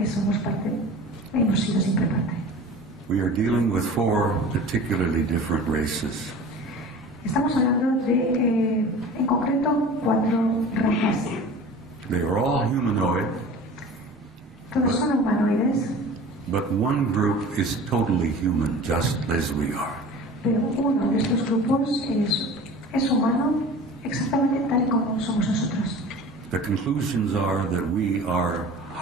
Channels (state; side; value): normal; both; correlation 0.40